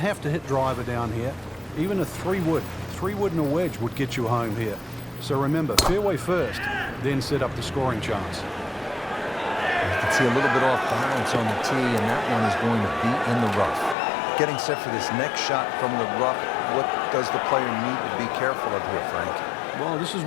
to hit driver down here. Even a 3-wood and a wedge would get you home here. So remember, fairway first, then set up the scoring chance. You can see a little bit off balance on the tee, and that one is going to be in the rough. Getting set for this next shot from the rough, what does the player need to be careful of here, Frank? Well, this is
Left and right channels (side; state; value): right; drops out; at 14.0 s